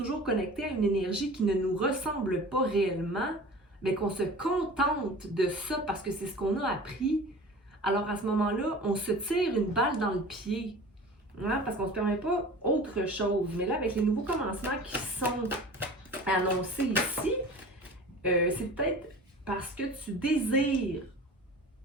connecté à une énergie qui ne nous ressemble pas réellement, mais qu'on se contente de ça parce que c'est ce qu'on a appris, alors à ce moment-là, on se tire une balle dans le pied. Hein, parce qu'on ne se permet pas autre chose. Mais là, avec les nouveaux commencements qui sont annoncés ici, c'est peut-être parce que tu désires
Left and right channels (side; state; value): both; normal; correlation 0.39